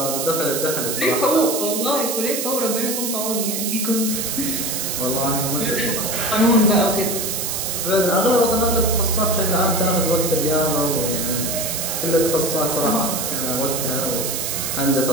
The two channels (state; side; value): noise; right; hiss, 2 dB below the sound